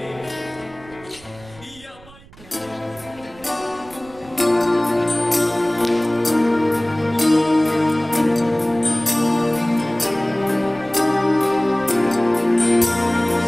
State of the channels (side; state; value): right; noise; rumble, 23 dB below the sound